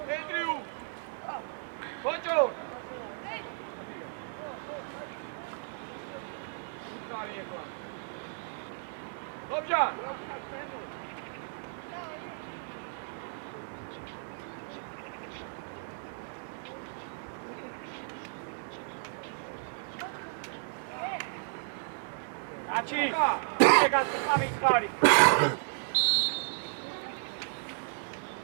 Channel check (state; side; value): silent; left; 55 dB below the other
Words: ენდრიუ. ბოჭო. ლობჯან. კაცი, ეგაც გამიწყარი.